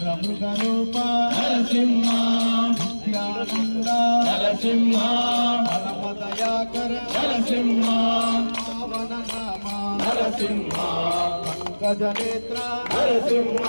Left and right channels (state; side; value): inverted; both; correlation -1.00